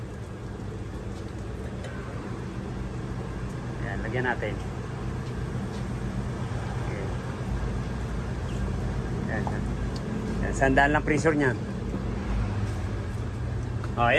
Yan, lagyan natin. Okay. Yan, yan. Yan, sandaan lang pressure niyan. Oh,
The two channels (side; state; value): both; identical; correlation 1.00